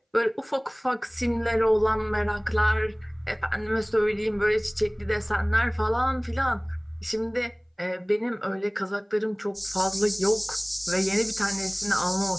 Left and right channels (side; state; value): both; identical; correlation 1.00